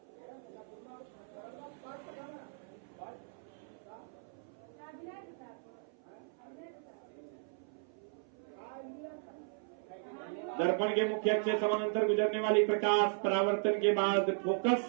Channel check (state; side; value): silent; left; 54 dB below the other